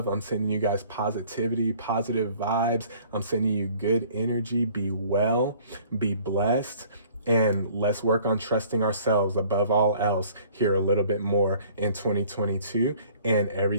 I'm sending you guys positivity, positive vibes. I'm sending you good energy. Be well, be blessed, and let's work on trusting ourselves above all else here a little bit more in 2022. and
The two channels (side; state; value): both; inverted; correlation -0.54